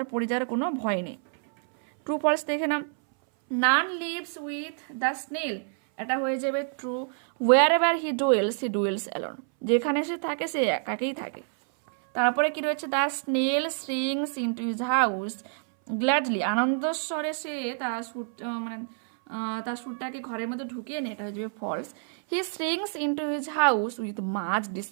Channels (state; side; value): silent; left; 60 dB below the other